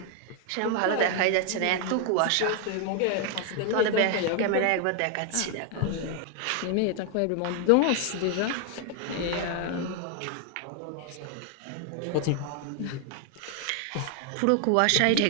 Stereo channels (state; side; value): different; both; correlation 0.00